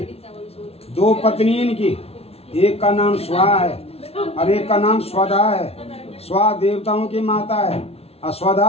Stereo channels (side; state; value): right; late; 0.30 ms